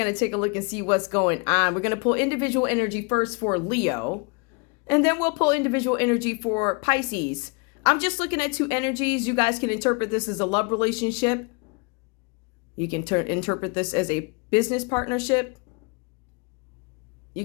to take a look and see what's going on. We're going to pull individual energy first for Leo, and then we'll pull individual energy for Pisces. I'm just looking at two energies. You guys can interpret this as a love relationship. You can interpret this as a business partnership. You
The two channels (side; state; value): right; quieter; 32.1 dB